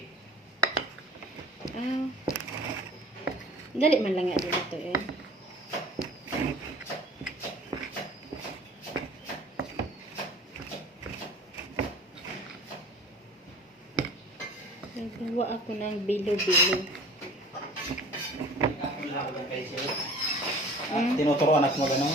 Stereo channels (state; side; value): normal; both; correlation 0.45